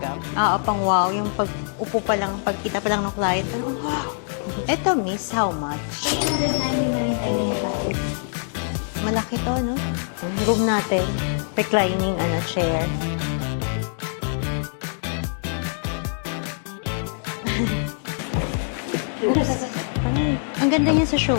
Pang wow. Yung pag upo pa lang, pagkita pa lang ng client. Eto, miss, how much? 199.95. Malaki to, no? Malaki. Room natin. Reclining chair. Ang ganda niya sa show.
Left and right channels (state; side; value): silent; right; digital silence